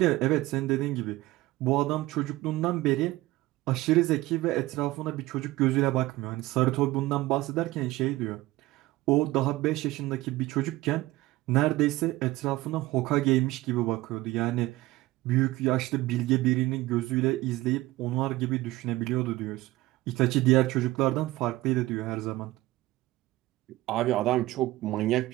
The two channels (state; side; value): quieter; left; 18.3 dB